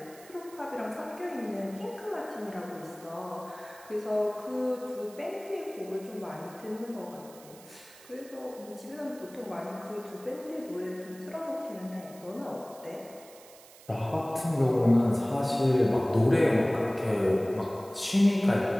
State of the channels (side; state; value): right; noise; hiss, 21 dB below the sound